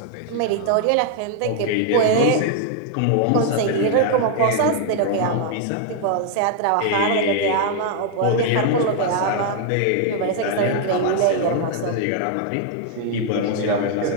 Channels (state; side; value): different; both; correlation 0.00